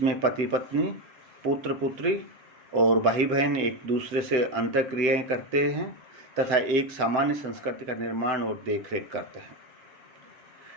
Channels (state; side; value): late; left; 7.8 ms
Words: पति पत्नी, पुत्र पुत्री और भाई बहन एक दूसरे से अंतःक्रियाएं करते हैं तथा एक सामान्य संस्कृति का निर्माण और देखरेख करते हैं।